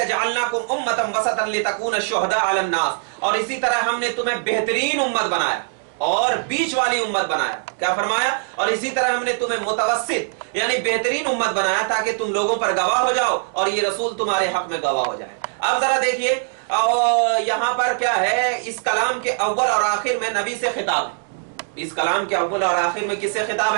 جَعَلْنَاكُمْ أُمَّةً وَسَطًا لِتَكُونَ الشُّهَدَاءَ عَلَى النَّاسِ، اور اسی طرح ہم نے تمہیں بہترین امت بنایا اور بیچ والی امت بنایا. کیا فرمایا، اور اسی طرح ہم نے تمہیں متوسط یعنی بہترین امت بنایا تاکہ تم لوگوں پر گواہ ہو جاؤ اور یہ رسول تمہارے حق میں گواہ ہو جائے. اب ذرا دیکھیے یہاں پر کیا ہے، اس کلام کے اول اور آخر میں نبی سے خطاب ہے. اس کلام کے اول اور آخر میں کس سے خطاب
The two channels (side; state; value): left; silent; 65 dB below the other